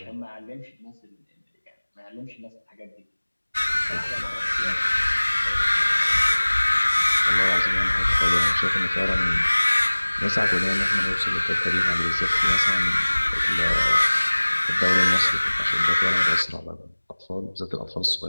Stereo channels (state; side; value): inverted; both; correlation -1.00